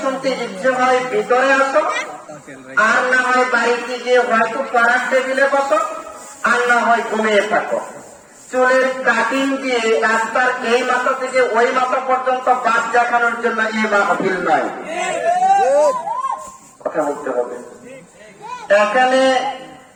শুনতে ইচ্ছে হয় ভিতরে আসো, আর না হয় বাড়িতে গিয়ে হয়তো পাড়ার টেবিলে বসো, আর না হয় ঘুমিয়ে থাকো। চুলের কাটিং দিয়ে রাস্তার এই মাথা থেকে ওই মাথা পর্যন্ত বাস দেখানোর জন্য এই মাহফিল নয়। কথা বলতে হবে। এখানে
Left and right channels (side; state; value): both; identical; correlation 1.00